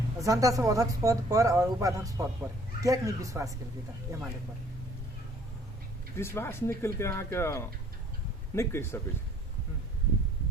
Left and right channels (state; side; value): normal; both; correlation 0.58